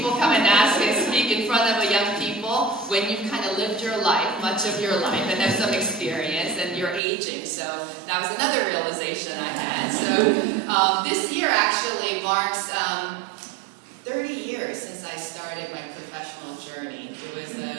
come and ask and speak in front of young people when you've kind of lived your life, much of your life, and have some experience, and you're aging. So that was another realization I had. So this year actually marks 30 years since I started my professional journey. It was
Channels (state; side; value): drops out; left; at 7.0 s